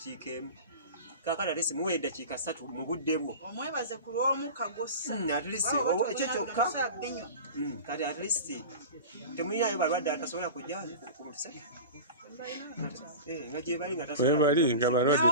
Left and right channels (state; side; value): inverted; both; correlation -0.32